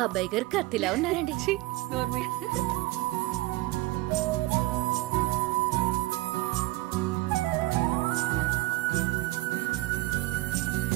అబ్బాయి గారు కత్తిలా ఉన్నారండి.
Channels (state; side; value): quieter; left; 19.5 dB